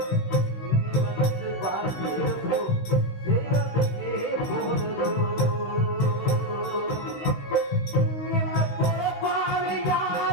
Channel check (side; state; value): right; late; 16 ms